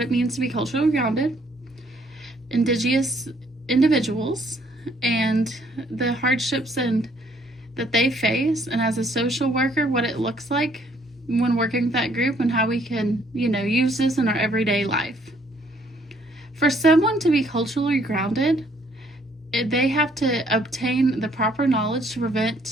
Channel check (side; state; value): both; normal; correlation 0.65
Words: means to be culturally grounded, Indigenous individuals, and the hardships that they face, and as a social worker, what it looks like when working with that group and how we can, use this in our everyday life. For someone to be culturally grounded, they have to obtain the proper knowledge to